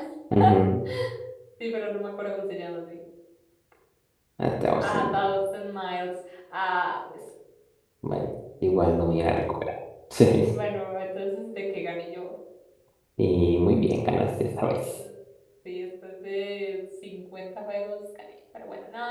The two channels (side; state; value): both; identical; correlation 1.00